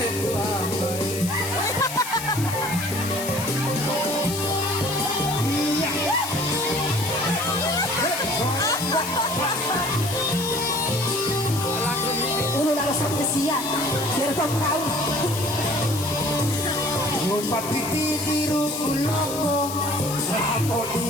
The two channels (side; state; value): left; noise; hiss, 8 dB below the sound